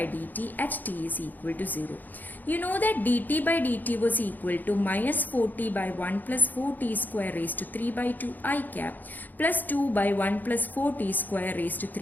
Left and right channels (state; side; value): late; right; 0.085 ms